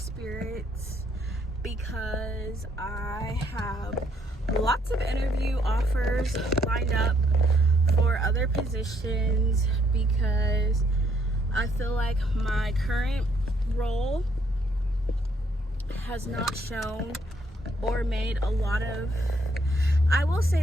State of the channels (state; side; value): normal; both; correlation 0.69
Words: because I have lots of interview offers lined up for other positions because I feel like my current role has not shown or made a lot of, I will